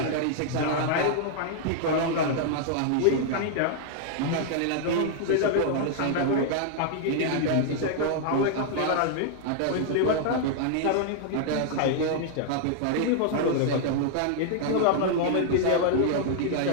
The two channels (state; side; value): different; both; correlation -0.01